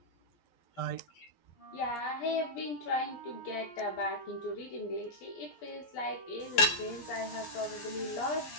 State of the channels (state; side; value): late; right; 12 ms